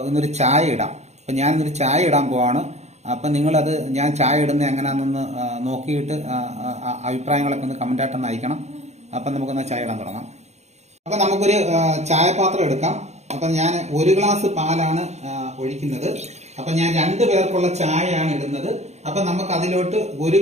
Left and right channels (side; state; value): left; late; 0.32 ms